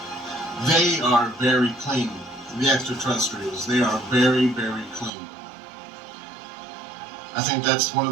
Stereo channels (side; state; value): left; drops out; at 5.1 s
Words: They are very clean, the extraterrestrials. They are very, very clean. I think that's one